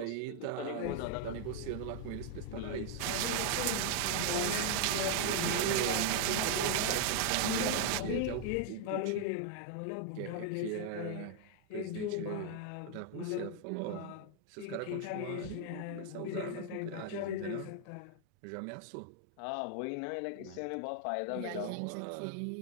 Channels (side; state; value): both; different; correlation 0.00